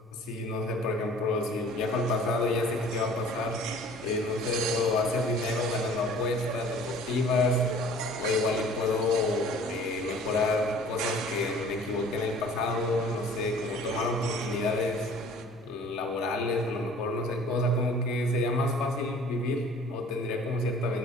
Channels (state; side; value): normal; both; correlation 0.49